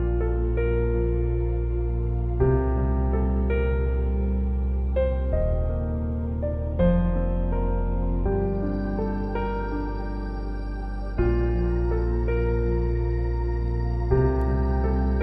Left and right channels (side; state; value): both; identical; correlation 1.00